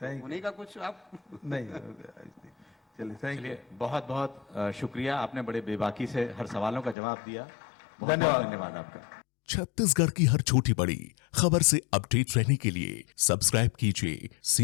उन्हीं का कुछ आप नहीं। चलिए, थैंक यू, बहुत बहुत शुक्रिया। आपने बड़े बेबाकी से हर सवालों का जवाब दिया। धन्यवाद आपका। छत्तीसगढ़ की हर छोटी बड़ी खबर से अपडेट रहने के लिए सब्सक्राइब कीजिए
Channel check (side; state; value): right; drops out; at 7.0 s